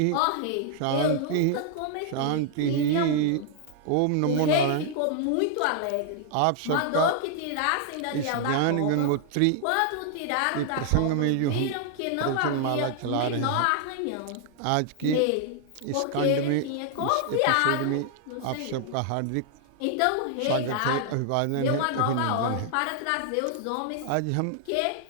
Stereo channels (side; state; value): both; different; correlation 0.00